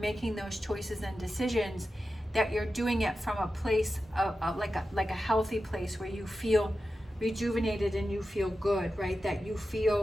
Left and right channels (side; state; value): both; normal; correlation 0.92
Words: those choices and decisions, that you're doing it from a place of like a healthy place where you feel rejuvenated and you feel good, right? That you